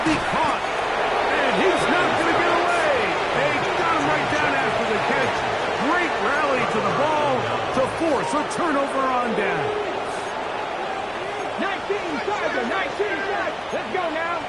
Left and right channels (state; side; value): identical; both; correlation 1.00